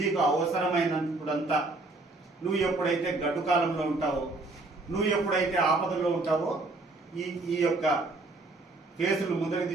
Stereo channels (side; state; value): left; quieter; 3.2 dB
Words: అవసరమైనప్పుడంతా నువ్వు ఎప్పుడైతే గడ్డు కాలంలో ఉంటావో, నువ్వు ఎప్పుడైతే ఆపదలో ఉంటావో ఈ యొక్క కేసులు ముందరికి